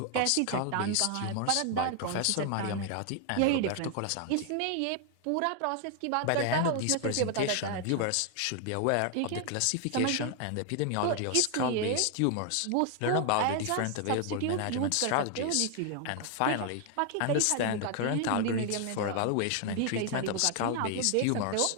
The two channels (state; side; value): different; both; correlation 0.00